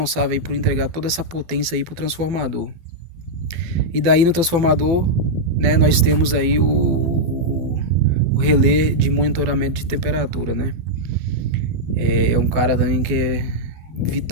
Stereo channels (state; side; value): late; left; 12 ms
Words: aí por entregar toda essa potência aí para o transformador. E daí no transformador, né? Nós temos aí o relé de monitoramento de temperatura, né? É um cara também que é